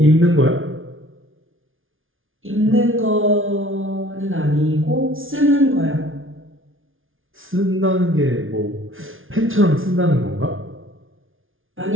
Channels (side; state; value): left; late; 0.58 ms